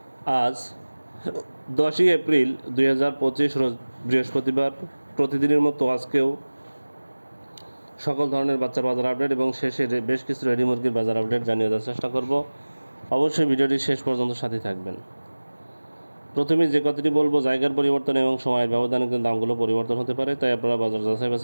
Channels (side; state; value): both; inverted; correlation -1.00